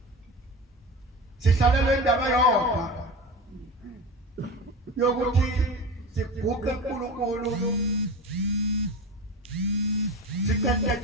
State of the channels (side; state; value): both; normal; correlation 0.29